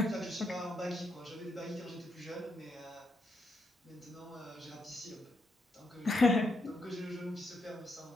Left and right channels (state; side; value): normal; both; correlation 0.79